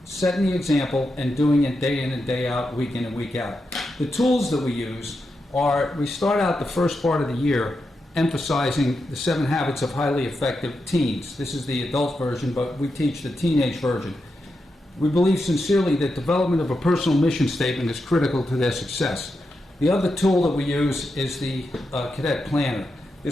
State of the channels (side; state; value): both; normal; correlation 0.87